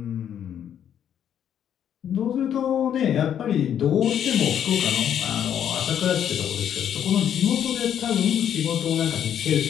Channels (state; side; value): quieter; right; 9.4 dB